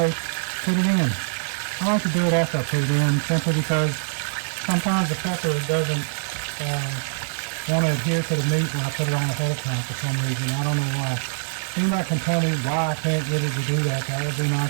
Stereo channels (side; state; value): left; silent; digital silence